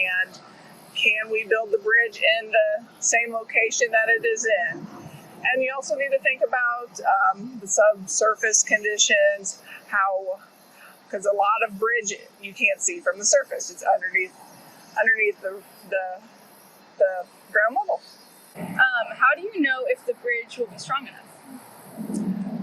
can we build the bridge in the same location that it is in? And you also need to think about the subsurface conditions, because a lot of bridge you can't see from the surface. It's underneath the ground level. How do you know if the bridge will be strong enough?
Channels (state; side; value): identical; both; correlation 1.00